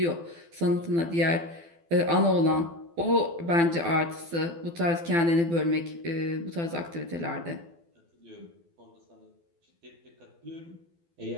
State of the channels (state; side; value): late; left; 12 ms